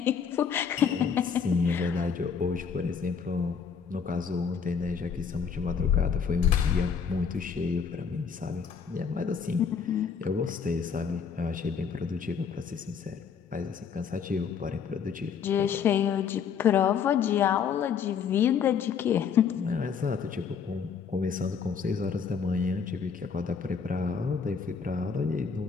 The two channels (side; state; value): right; quieter; 6.6 dB